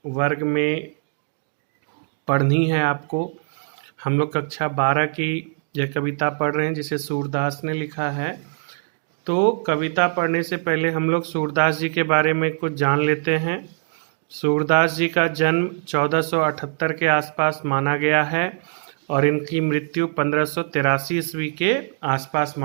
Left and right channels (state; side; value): silent; left; digital silence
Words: वर्ग में पढ़नी है आपको। हम लोग कक्षा 12 की यह कविता पढ़ रहे हैं जिसे सूरदास ने लिखा है। तो कविता पढ़ने से पहले हम लोग सूरदास जी के बारे में कुछ जान लेते हैं। सूरदास जी का जन्म 1478 के आसपास माना गया है और इनकी मृत्यु 1583 ईस्वी के आसपास